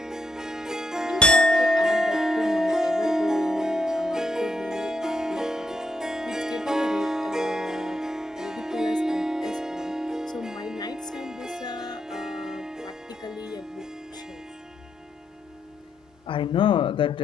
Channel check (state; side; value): normal; both; correlation 0.78